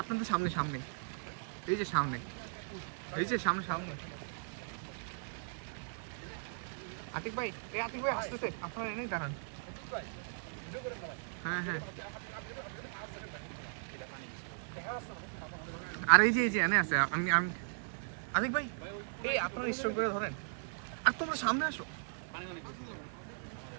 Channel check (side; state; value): left; silent; 53 dB below the other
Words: আপনাদের সামনে সামনে, এই যে সামনে, এই যে সামনে সামনে। আতিক ভাই, এই আতিক ভাই আসতেছে, আপনারা এনেই দাঁড়ান। হ্যাঁ হ্যাঁ, আর এই যে এনে আছে। আমি আমি আতিক ভাই, এই আপনারা স্টোর করে ধরেন, আর তোমরা সামনে আসো।